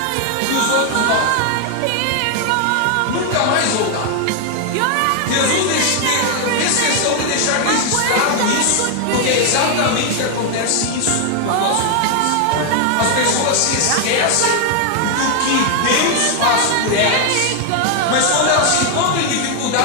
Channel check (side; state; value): both; different; correlation 0.00